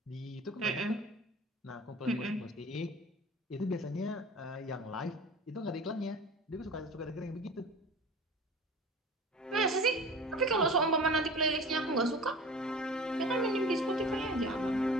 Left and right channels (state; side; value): normal; both; correlation 0.39